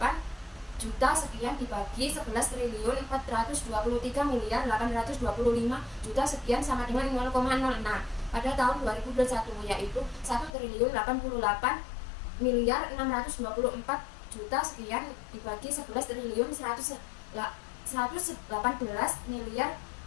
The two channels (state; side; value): drops out; right; at 10.5 s